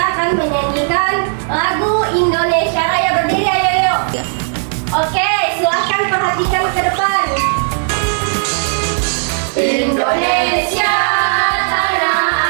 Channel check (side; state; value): left; silent; 62 dB below the other